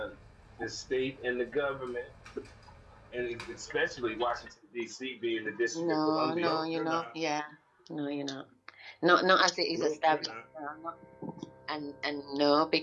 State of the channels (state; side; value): identical; both; correlation 1.00